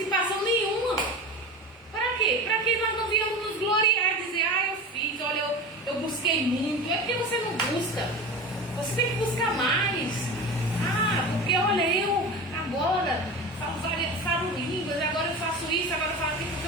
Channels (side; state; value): both; normal; correlation 0.29